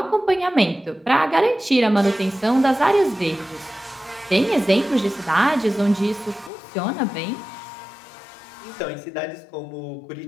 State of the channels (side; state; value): right; drops out; at 6.5 s